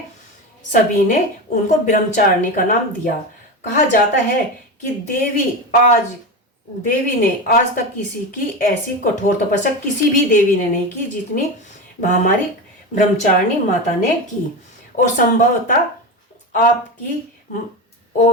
सभी ने उनको ब्रह्मचारिणी का नाम दिया। कहा जाता है कि देवी ने आज तक किसी की ऐसी कठोर तपस्या किसी भी देवी ने नहीं की जितनी हमारी ब्रह्मचारिणी माता ने की। और संभवतः आपकी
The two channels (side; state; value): both; normal; correlation 0.21